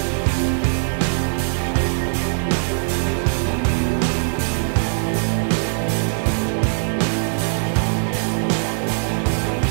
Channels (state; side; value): silent; left; 59 dB below the other